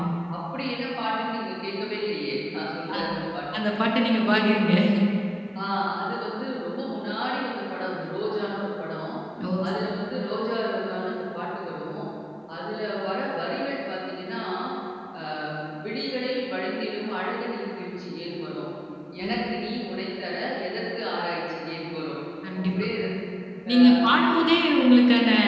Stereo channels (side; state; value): both; identical; correlation 1.00